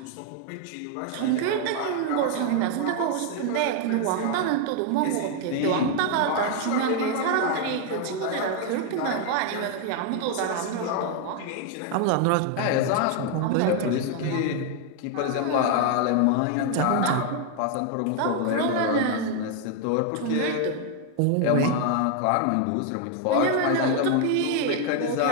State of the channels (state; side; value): different; both; correlation 0.00